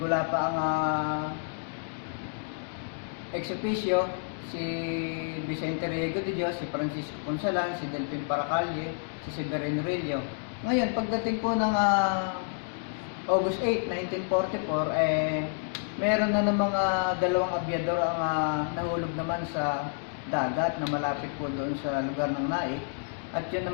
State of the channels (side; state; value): right; silent; digital silence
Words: ang ex-officio, si Vicente Riego de Dios, si Francisco Consalan, si Delphin Paracalle, si Severino Rillo. Ngayon, pagdating po ng August 8, 1944, meron na ng mga 2 abyador ang nahulog naman sa dagat na malapit po doon sa lugar ng Naik. At yun